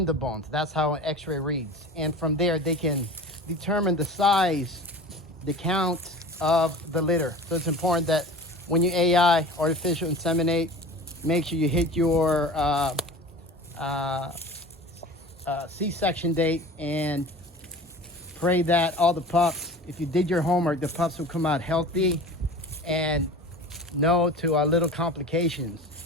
the bones. That's how an x-ray reads. And from there, they can determine the size, the count of the litter. So it's important that when you AI, artificial inseminate, make sure you hit your C-section date and pray that all the pups, if you did your homework, the pups will come out healthy and no to little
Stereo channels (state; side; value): normal; both; correlation 0.38